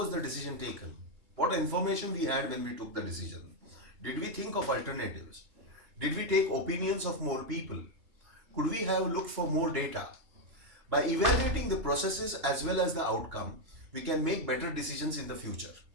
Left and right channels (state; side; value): late; left; 3.4 ms